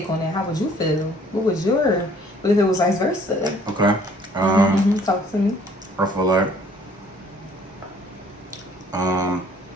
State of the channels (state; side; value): normal; both; correlation 0.58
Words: on that? How would you feel? What if it was vice versa? Okay. Talk to me. I feel like Man,